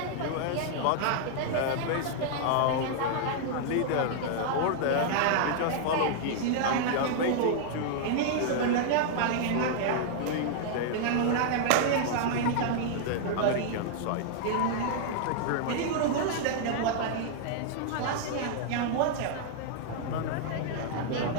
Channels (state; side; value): different; both; correlation -0.01